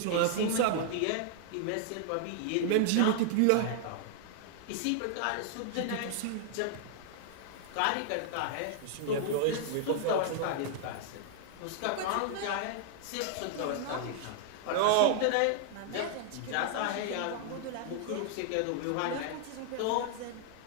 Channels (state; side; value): different; both; correlation -0.01